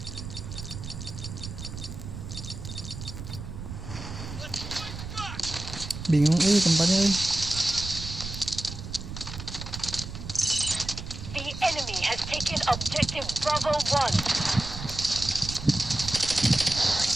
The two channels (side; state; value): right; noise; rumble, 9 dB below the sound